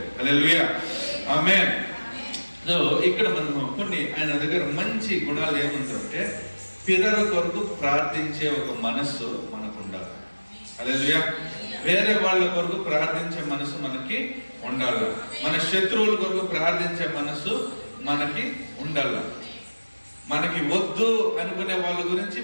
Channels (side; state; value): both; inverted; correlation -1.00